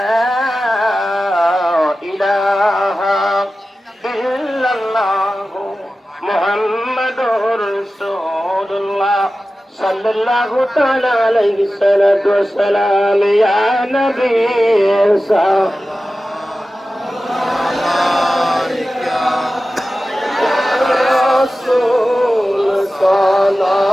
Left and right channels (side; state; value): both; normal; correlation 0.95